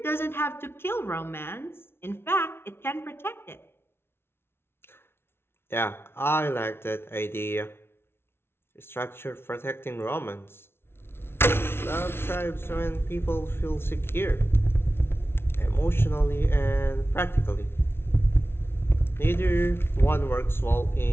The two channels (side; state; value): right; late; 0.12 ms